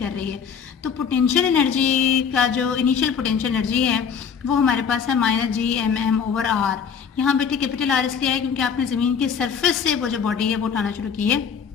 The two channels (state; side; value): quieter; right; 6.9 dB